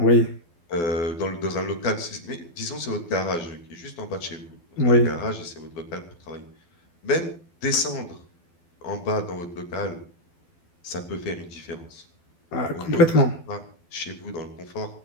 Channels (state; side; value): late; right; 12 ms